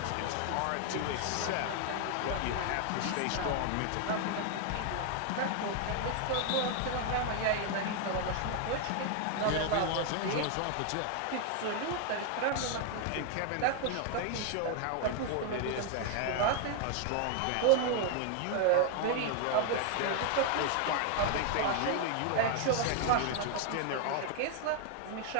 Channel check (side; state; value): both; different; correlation 0.00